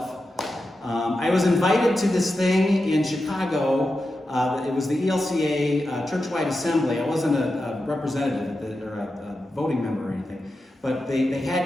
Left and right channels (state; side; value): normal; both; correlation 0.90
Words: I was invited to this thing in Chicago. It was the ELCA church-wide assembly. I wasn't a representative or a voting member or anything. But they